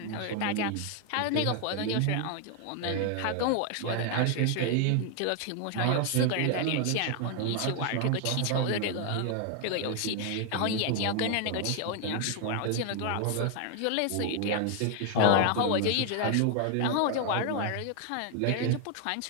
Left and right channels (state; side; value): different; both; correlation 0.00